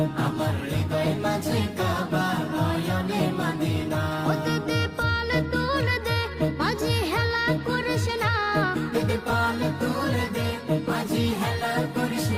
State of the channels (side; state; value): both; identical; correlation 1.00